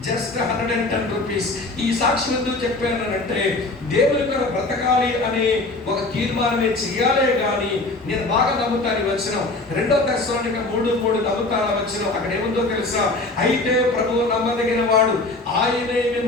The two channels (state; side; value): quieter; right; 3.1 dB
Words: జస్ట్ 110 రూపీస్. ఈ సాక్షి ఎందుకు చెప్పానంటే దేవుని కొరకు బ్రతకాలి అనే ఒక తీర్మానమే చేయాలే కానీ నేను బాగా నమ్ముతాను వచ్చిన 2 దశలోనిక 3:3 నమ్ముతాను వచ్చిన. అక్కడ ఏముందో తెలుసా? అయితే ప్రభువు నమ్మదగిన వాడు, ఆయనే